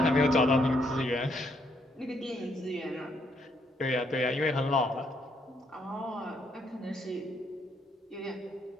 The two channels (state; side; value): normal; both; correlation 0.72